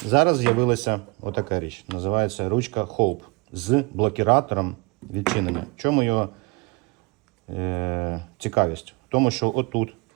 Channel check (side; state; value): left; quieter; 27.3 dB